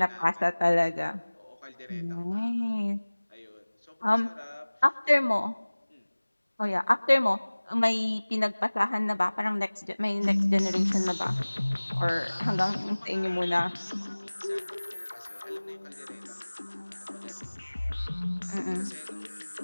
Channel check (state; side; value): inverted; both; correlation -1.00